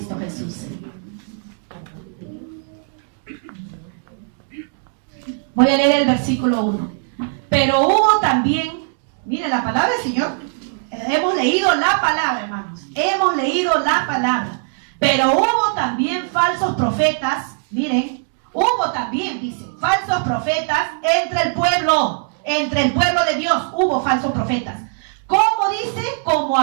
Jesús. Voy a leer el versículo 1. Pero hubo también, miren la palabra del Señor. Hemos leído la palabra, hermanos. Hemos leído la palabra. Pero hubo también falsos profetas. Miren, hubo también, dice, falsos profetas entre el pueblo de Dios. Hubo falsos profetas. ¿Cómo dice? Como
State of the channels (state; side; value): silent; left; digital silence